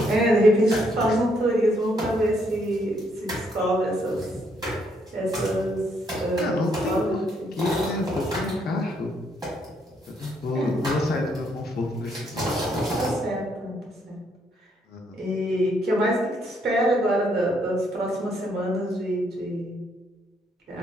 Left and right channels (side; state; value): both; normal; correlation 0.72